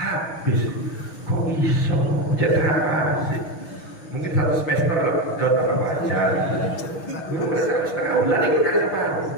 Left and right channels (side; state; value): right; late; 6.3 ms